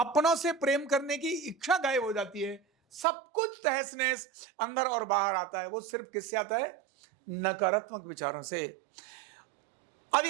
से प्रेम करने की इच्छा गायब हो जाती है। सब कुछ तहस नहस अंदर और बाहर आता है। वो सिर्फ किससे आता है, नकारात्मक विचारों से। अब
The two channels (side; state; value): left; drops out; at 3.1 s